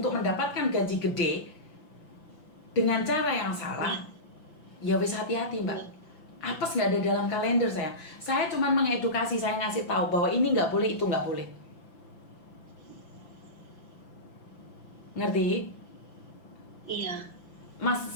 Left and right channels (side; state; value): right; late; 5.9 ms